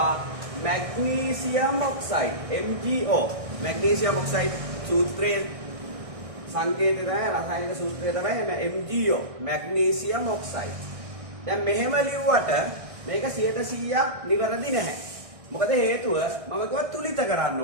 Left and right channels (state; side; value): late; left; 1.6 ms